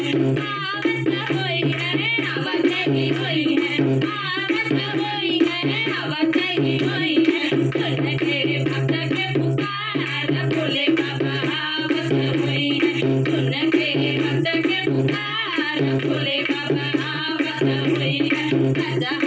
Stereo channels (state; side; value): identical; both; correlation 1.00